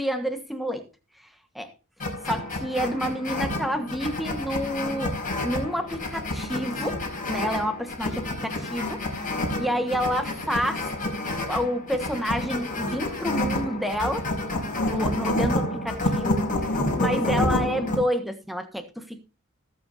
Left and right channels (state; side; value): normal; both; correlation 0.57